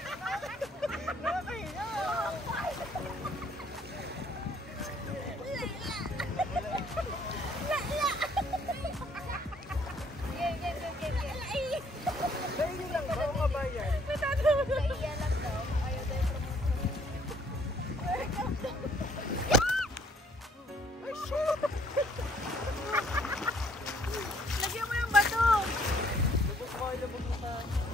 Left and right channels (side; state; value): both; normal; correlation 0.63